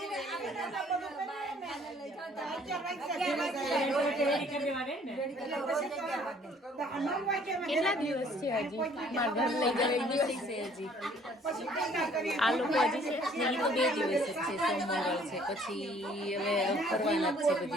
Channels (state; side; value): normal; both; correlation 0.58